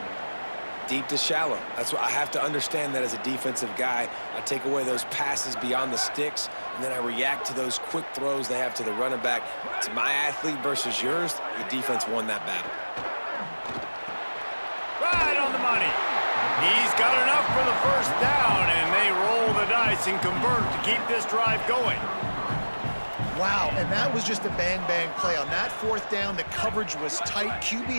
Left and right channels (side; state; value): both; inverted; correlation -1.00